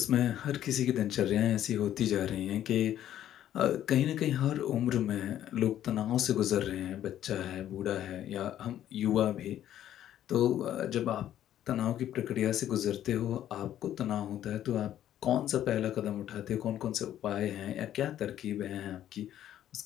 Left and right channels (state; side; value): quieter; right; 11.6 dB